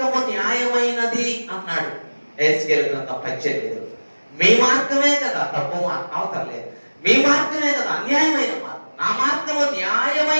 న్యాయమైనది అన్నాడు. ఎహెజ్కేలు గ్రంథం 18. మీ మార్గమే కదా తప్పు మార్గం, అవసరం లేదు. మీ మార్గమే కదా అన్యాయమైన మార్గం. నా మార్గము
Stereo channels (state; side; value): inverted; both; correlation -1.00